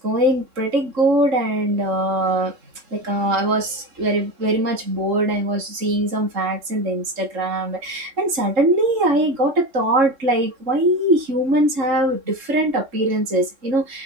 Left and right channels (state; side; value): late; left; 3.8 ms